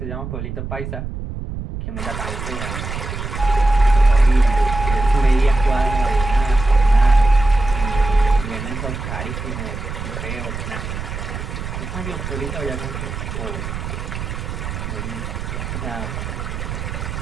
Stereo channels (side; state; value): right; noise; rumble, 6 dB below the sound